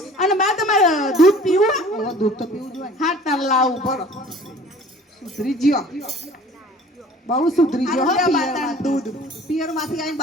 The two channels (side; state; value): both; normal; correlation 0.48